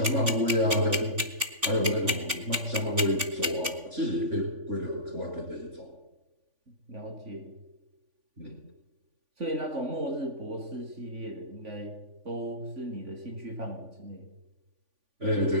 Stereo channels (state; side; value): late; left; 3.5 ms